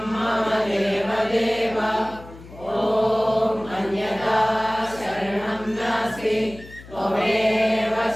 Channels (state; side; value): noise; left; hum, 18 dB below the sound